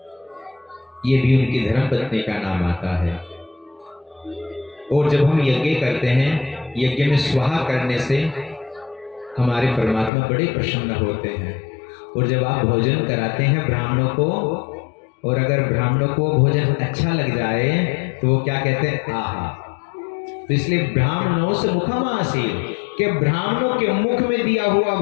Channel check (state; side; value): drops out; right; at 10.1 s